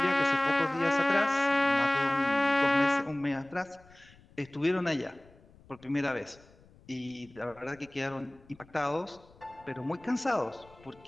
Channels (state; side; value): noise; left; rumble, 26 dB below the sound